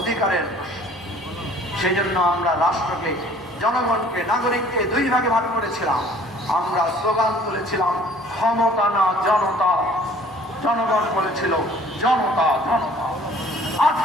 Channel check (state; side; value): normal; both; correlation 0.53